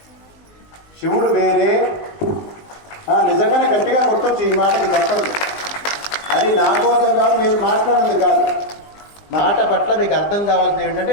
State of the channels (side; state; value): right; late; 20 ms